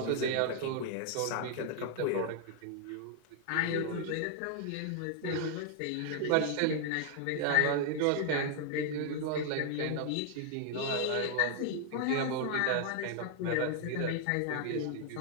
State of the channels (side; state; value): both; different; correlation 0.00